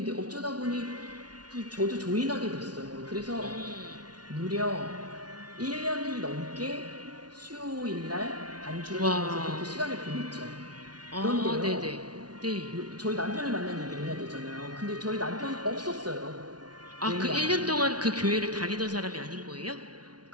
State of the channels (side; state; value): left; late; 0.69 ms